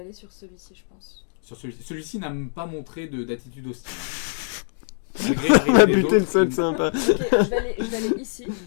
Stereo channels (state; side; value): silent; right; 63 dB below the other